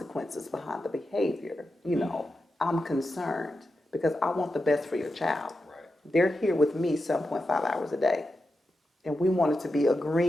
behind the behavior. I'm concerned because I want the best for your child. Right. They're here with me 7.5 hours a day, and we want it to be a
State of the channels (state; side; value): normal; both; correlation 0.89